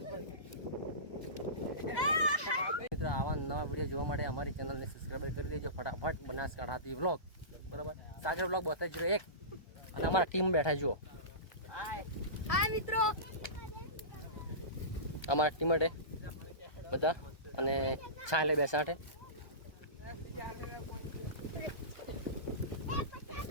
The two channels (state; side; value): late; right; 1.2 ms